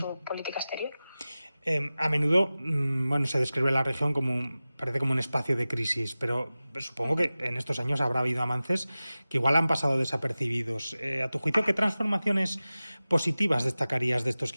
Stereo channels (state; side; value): inverted; both; correlation -0.97